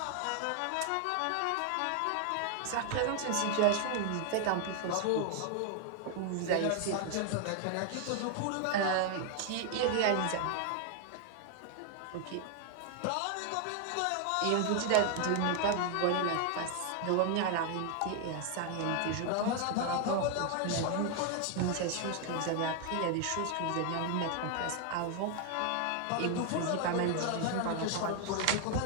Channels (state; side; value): different; both; correlation 0.00